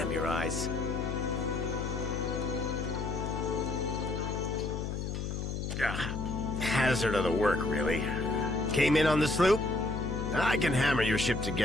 your eyes. Hazard of the work, really. Came in on the sloop? I can hammer your ship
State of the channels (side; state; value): left; noise; hum, 3 dB below the sound